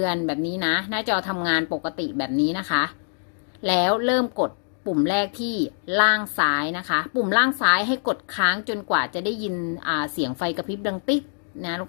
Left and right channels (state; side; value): silent; right; digital silence